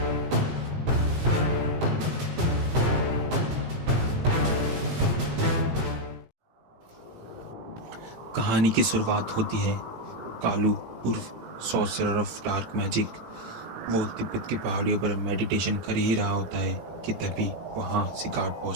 कहानी की शुरुआत होती है कालू उर्फ सॉर्सरर ऑफ डार्क मैजिक। वो तिब्बत की पहाड़ियों पर मेडिटेशन कर ही रहा होता है कि तभी वहाँ सिगार्ड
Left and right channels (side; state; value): left; late; 18 ms